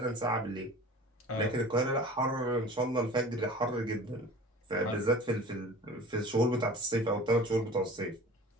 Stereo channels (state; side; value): normal; both; correlation 0.41